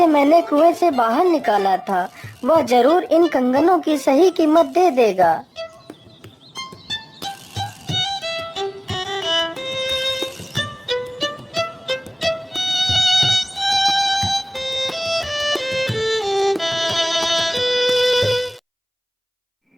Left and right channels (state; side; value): identical; both; correlation 1.00